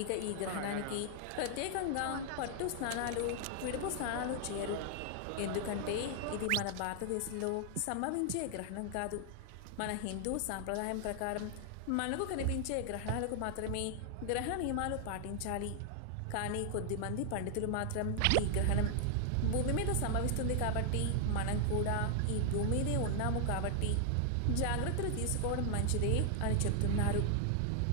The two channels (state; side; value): different; both; correlation 0.00